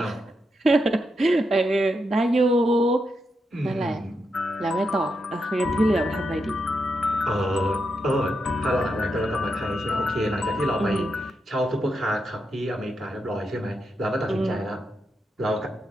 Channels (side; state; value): both; normal; correlation 0.84